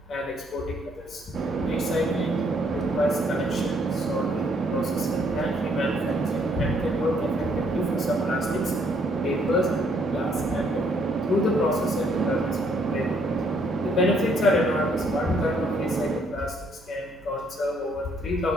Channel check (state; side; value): noise; right; hum, 26 dB below the sound